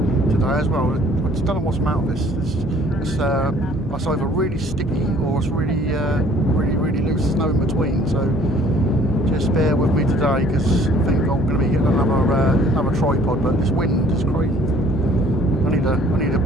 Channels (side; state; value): both; normal; correlation 0.56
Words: today as well. I just don't know what's the matter with this. It's either really sticky or it's really loose. There's no in between. So just bear with me today because I think I'm going to be getting another tripod. But this wind is crazy. I need